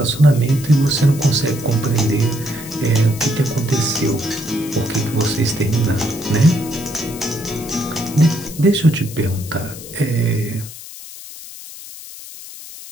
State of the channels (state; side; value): noise; left; hiss, 14 dB below the sound